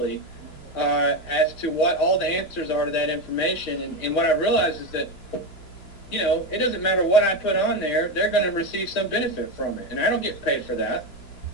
as to what all the answers are to that information. And what I realized is that, you know, it doesn't matter what I put on there, they're going to receive some benefit from it. And I don't get paid for that.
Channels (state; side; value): late; right; 2.9 ms